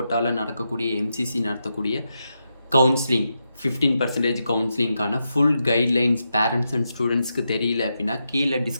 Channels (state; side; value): inverted; both; correlation -0.86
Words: நடக்கக்கூடிய எம்சிசி நடத்தக்கூடிய கவுன்சிலிங் 15% கவுன்சிலிங்கான ஃபுல் கைட்லைன்ஸ் பேரண்ட்ஸ் அண்ட் ஸ்டூடெண்ட்ஸ்க்கு தெரியல அப்படின்னா கீழே